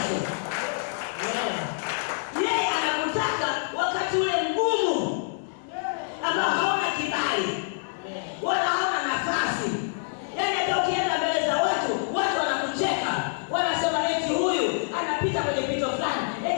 Yeye anakutaka wakati ule mgumu ambao hauna kibali wala hauna nafasi. Yaani hata ukienda mbele za watu wanakucheka. Wanasema eti huyu anapita kwenye pito fulani.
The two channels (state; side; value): silent; right; digital silence